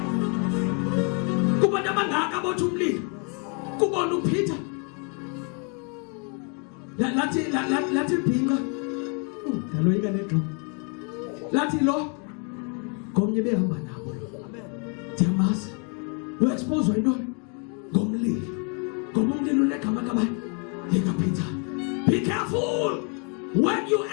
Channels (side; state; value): right; quieter; 37.7 dB